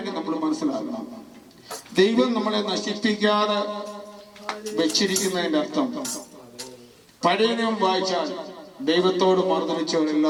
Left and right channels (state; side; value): identical; both; correlation 1.00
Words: നമ്മൾ മനസ്സിലാക്കണം, ദൈവം നമ്മളെ നശിപ്പിക്കാതെ വെച്ചിരിക്കുന്നതിന്റെ അർത്ഥം, പഴയ നിയമം വായിച്ചാൽ ദൈവത്തോട്